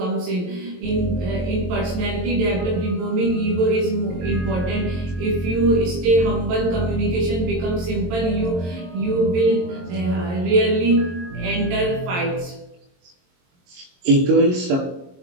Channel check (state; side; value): late; left; 22 ms